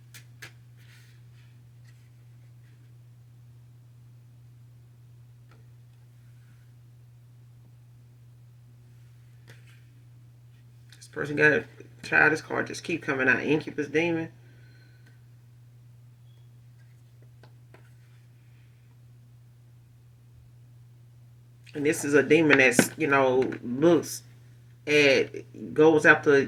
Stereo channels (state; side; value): identical; both; correlation 1.00